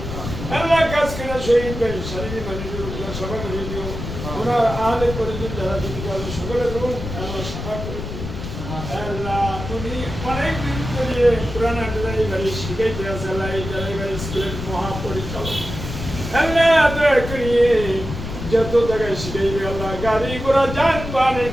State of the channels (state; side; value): noise; left; rumble, 7 dB below the sound